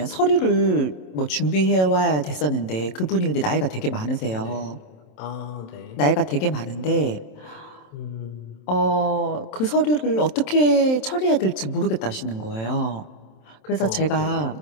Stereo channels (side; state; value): right; late; 27 ms